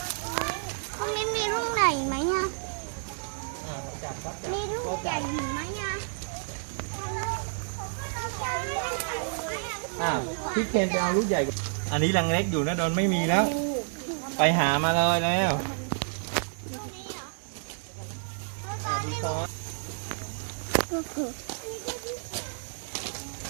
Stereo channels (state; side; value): silent; left; 58 dB below the other